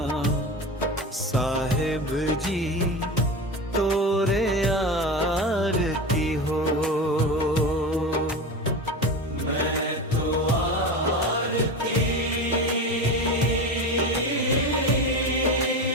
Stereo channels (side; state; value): both; normal; correlation 0.25